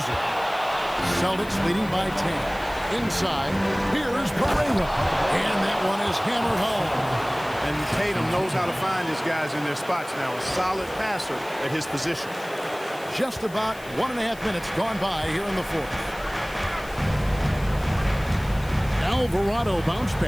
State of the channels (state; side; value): noise; left; hiss, 20 dB below the sound